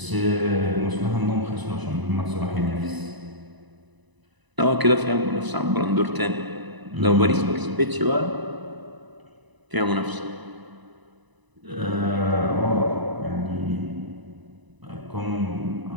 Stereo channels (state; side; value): late; left; 1.0 ms